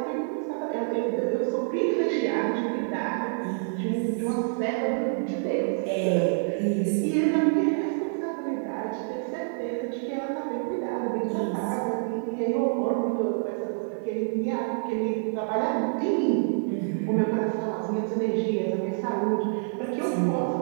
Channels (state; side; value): silent; left; 60 dB below the other